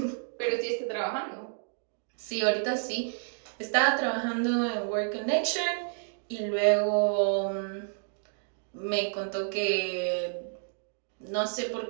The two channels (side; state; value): left; silent; digital silence